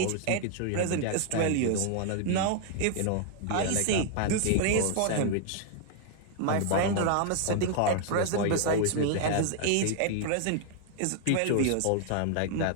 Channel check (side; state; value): both; different; correlation 0.00